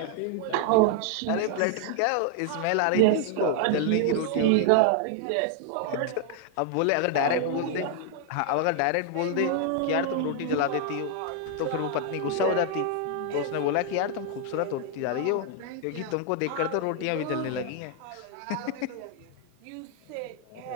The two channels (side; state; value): both; different; correlation 0.00